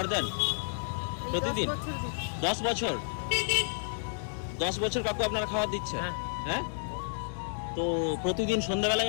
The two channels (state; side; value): silent; right; digital silence